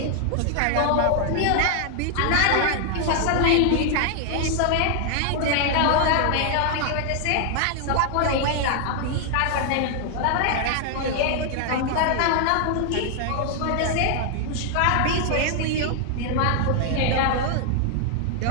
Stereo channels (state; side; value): different; both; correlation 0.00